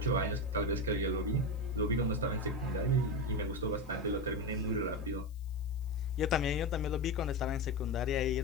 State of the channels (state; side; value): noise; left; hiss, 29 dB below the sound